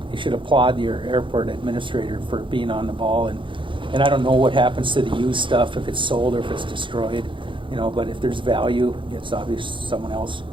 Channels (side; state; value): left; late; 0.24 ms